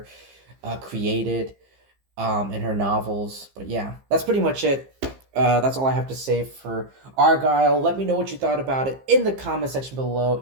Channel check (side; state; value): left; late; 15 ms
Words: created in her novels. But yeah, that's pretty much it. That's all I have to say for Argylle. Let me know what you thought about it in the comment section below